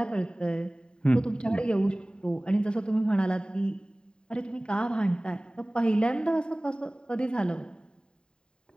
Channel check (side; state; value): right; late; 0.049 ms